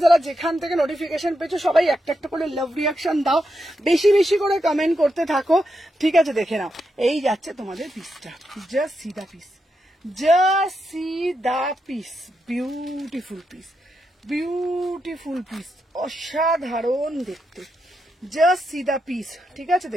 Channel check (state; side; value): normal; both; correlation 0.84